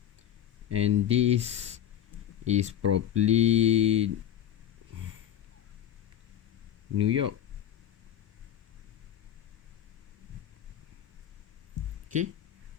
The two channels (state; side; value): quieter; right; 10.6 dB